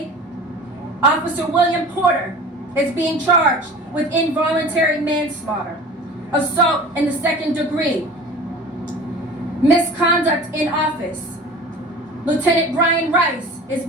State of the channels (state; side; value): normal; both; correlation 0.39